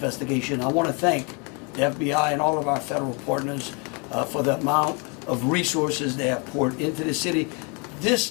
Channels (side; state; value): right; quieter; 33.3 dB